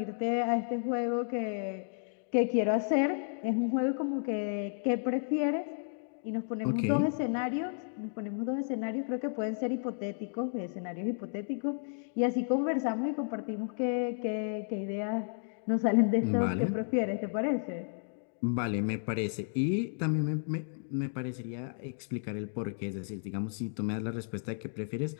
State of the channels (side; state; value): right; silent; digital silence